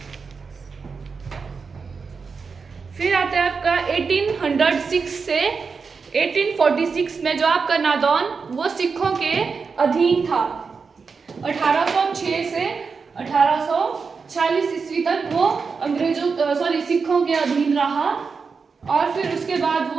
फिर आता है आपका 1806 से 1846 में जो आपका नादौन वो सिखों के अधीन था। 1806 से 1846 ईस्वी तक वो सिखों के अधीन रहा। और फिर उसके बाद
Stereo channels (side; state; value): left; quieter; 5.1 dB